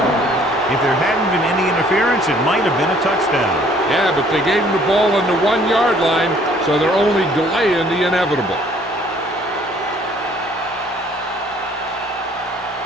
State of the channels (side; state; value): both; normal; correlation 0.59